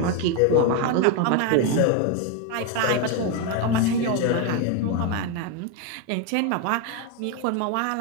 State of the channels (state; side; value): different; both; correlation 0.02